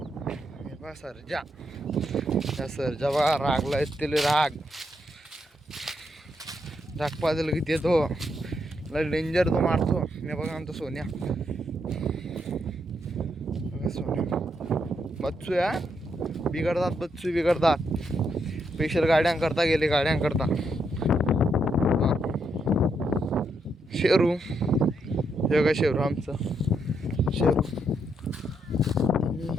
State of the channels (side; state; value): both; normal; correlation 0.78